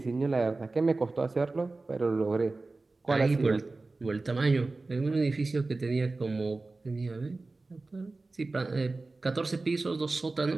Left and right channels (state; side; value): quieter; left; 3.4 dB